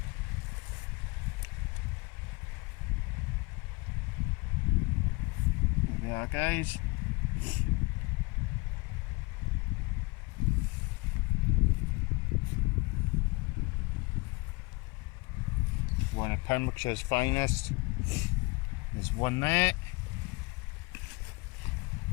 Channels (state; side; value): quieter; right; 25.9 dB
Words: Guys, one of Pembrokeshire's finest. There's one there.